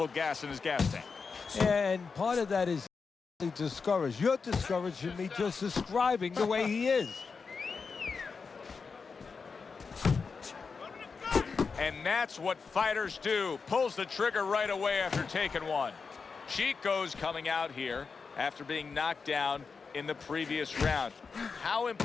gas in his gas tank. And part of that is discouraged. You're discouraging me just describing the way he is. And that's what fighters do. Pulls the trigger right away after taking one. Chico's coming out here after being knocked down in the previous round. How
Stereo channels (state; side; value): quieter; right; 5.1 dB